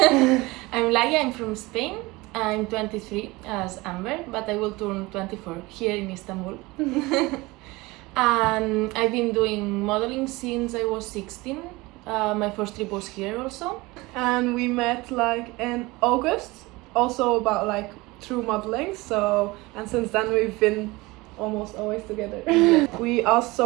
I'm Laia, I'm from Spain. I'm 23 as Amber, but I will turn 24 here in Istanbul. And I've been doing modeling since I was 16. My first trip was here also. And we met like in August, also about like through modeling. So, and since then we've been almost always together. We asked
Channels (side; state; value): left; quieter; 22.2 dB